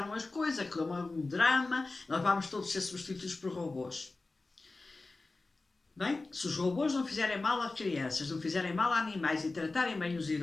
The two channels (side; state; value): right; quieter; 3.4 dB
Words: as coisas, aquilo é um drama, nós vamos todos ser substituídos por robôs. Bem, se os robôs não fizerem mal a crianças, não fizerem mal a animais e tratarem bem os